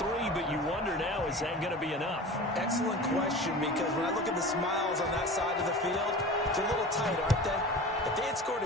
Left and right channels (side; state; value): both; normal; correlation 0.35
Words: but you wonder now, is that going to be enough? Excellent question, because when I look at the smiles on that side of the field, it's a little tight, aren't they? If they had scored a